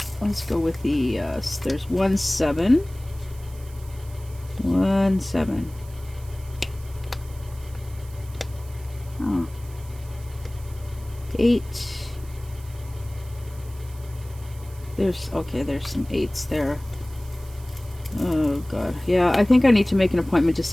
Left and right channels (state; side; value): noise; right; hiss, 22 dB below the sound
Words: Let's go with the, there's 1 7. 1 7. Oh. 8. There's, okay, there's some 8s there. Oh, God. Yeah, I think I need to make an appointment to